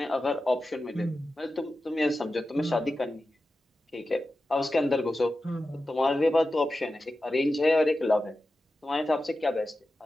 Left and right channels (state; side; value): normal; both; correlation 0.93